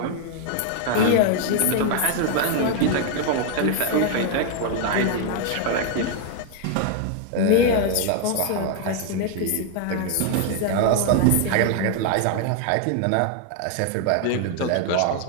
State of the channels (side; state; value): both; different; correlation 0.00